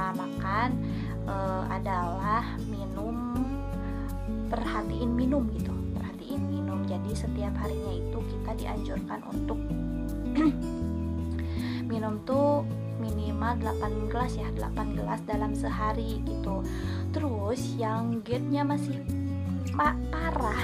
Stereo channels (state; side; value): identical; both; correlation 1.00